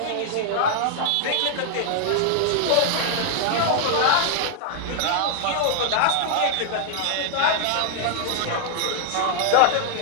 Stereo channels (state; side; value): different; both; correlation -0.01